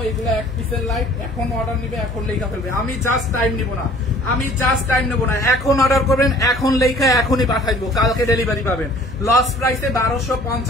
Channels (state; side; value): normal; both; correlation 0.52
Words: এগুলো এক পিসের লাইট, এখন অর্ডার নিবে, এখন লেখা ফেলবে। আমি জাস্ট টাইম নিব না, এখন অর্ডার করবেন, এখন লেখা এখনই পাঠাই দেবো, কালকে ডেলিভারি পাবেন। লস প্রাইসে